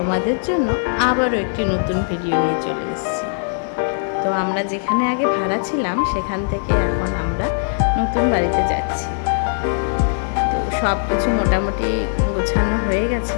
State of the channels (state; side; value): silent; right; digital silence